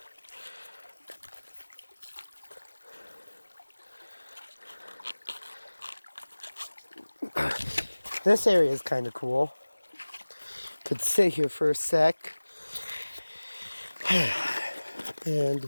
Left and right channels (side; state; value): both; inverted; correlation -1.00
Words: This area is kind of cool. Could sit here for a sec